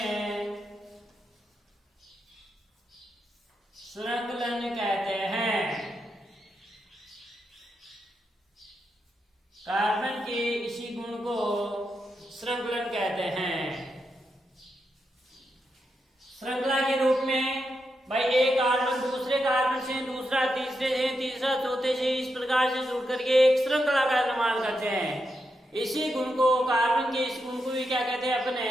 श्रृंखलन कहते हैं। कार्बन के इसी गुण को श्रृंखलन कहते हैं। श्रृंखला के रूप में भाई एक कार्बन दूसरे कार्बन से, दूसरा तीसरे से, तीसरा चौथे से, इस प्रकार से जुड़ करके एक श्रृंखला का निर्माण करते हैं। इसी गुण को, कार्बन के इस गुण को भी क्या कहते हैं अपने?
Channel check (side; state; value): both; normal; correlation 0.85